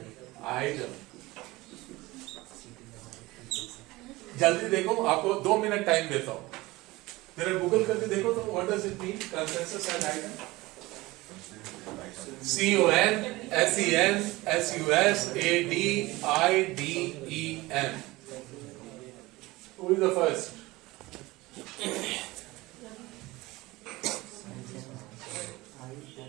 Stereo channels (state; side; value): quieter; left; 20.4 dB